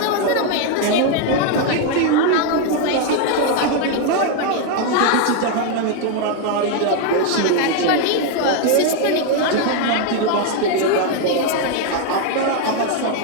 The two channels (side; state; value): both; different; correlation 0.01